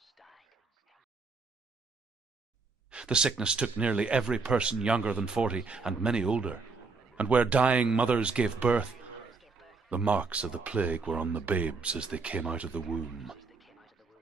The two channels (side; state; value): left; quieter; 4.2 dB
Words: The sickness took nearly every person younger than 40 and many older, and where dying mothers gave birth, the marks of the plague were on the babes as they came out of the womb.